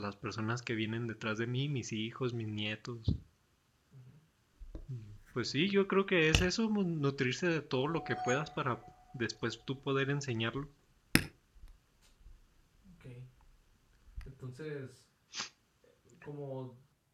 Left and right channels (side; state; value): both; identical; correlation 1.00